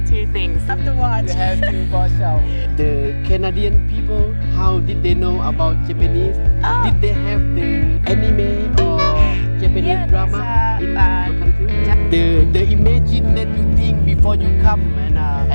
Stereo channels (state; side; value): inverted; both; correlation -1.00